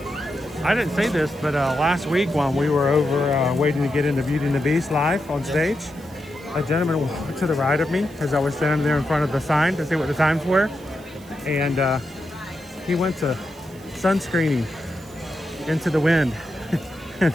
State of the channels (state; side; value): noise; right; hiss, 24 dB below the sound